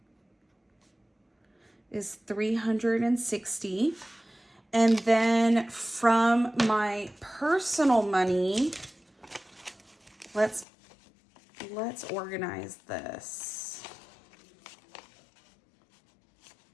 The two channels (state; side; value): drops out; right; at 10.7 s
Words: is 360. And then from my personal money, let's organize this.